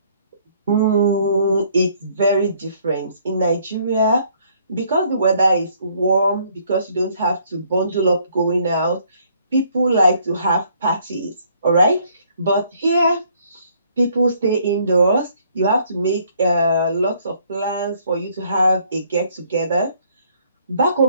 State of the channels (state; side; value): inverted; both; correlation -0.64